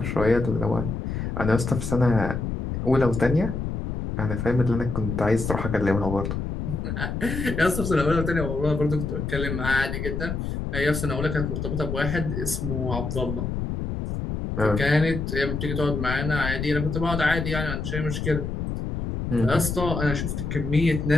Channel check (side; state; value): left; noise; rumble, 3 dB below the sound